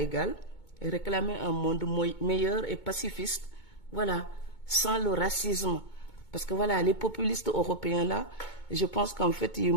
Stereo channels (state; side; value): late; right; 2.2 ms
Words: et réclamer un monde meilleur et pacifiste. Voilà, sans le racisme. Parce que voilà, les populistes européens là, je pense qu'en fait, ils